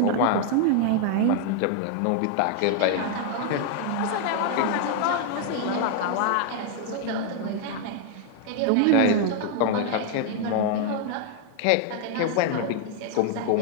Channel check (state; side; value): different; both; correlation 0.00